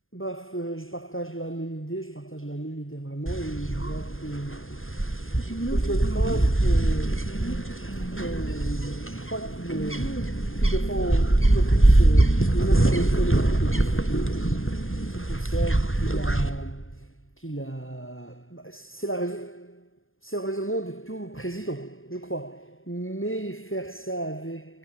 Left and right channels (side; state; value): right; late; 0.60 ms